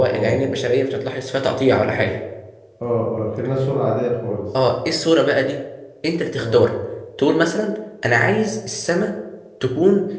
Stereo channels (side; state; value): both; identical; correlation 1.00